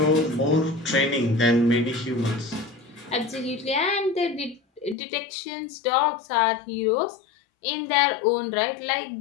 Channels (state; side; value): drops out; right; at 5.0 s